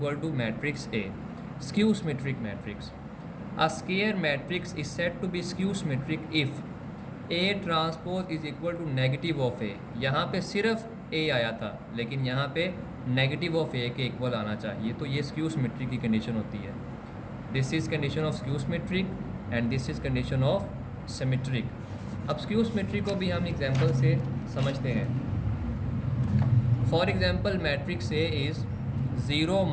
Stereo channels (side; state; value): both; identical; correlation 1.00